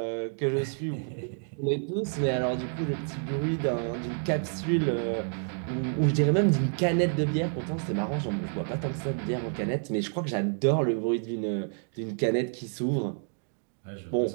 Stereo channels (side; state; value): left; silent; 59 dB below the other